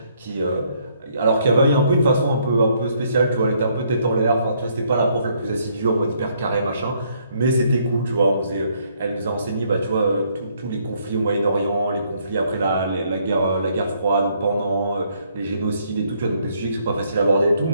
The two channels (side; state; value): both; inverted; correlation -0.69